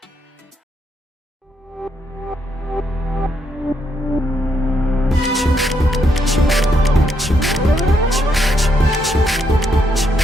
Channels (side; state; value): both; normal; correlation 0.77